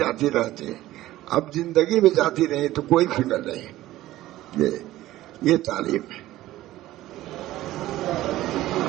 رہتی، اب زندگی میں جاتی رہی تو کوئی فکر نہیں۔ یہ تعلیم ہے۔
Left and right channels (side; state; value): left; quieter; 15.5 dB